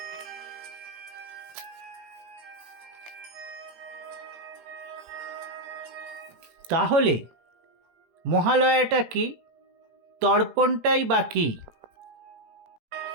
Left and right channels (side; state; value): left; late; 18 ms